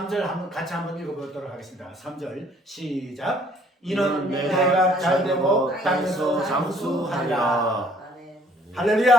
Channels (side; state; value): both; normal; correlation 0.60